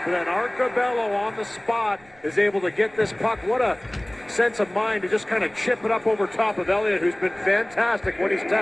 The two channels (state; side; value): noise; right; rumble, 28 dB below the sound